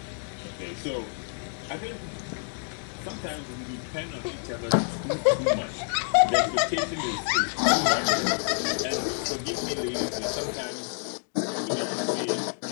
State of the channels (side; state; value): right; silent; 59 dB below the other